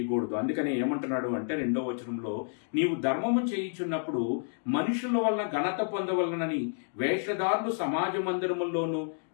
అందుకని ఏమంటున్నాడు అంటే 2వ వచనంలో, నీవు ధర్మము చేయుచున్నప్పుడు మనుషుల వలన ఘనత పొందవలనని వేషధారులు సమాజ మందిరముల్లోనూ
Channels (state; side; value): silent; right; digital silence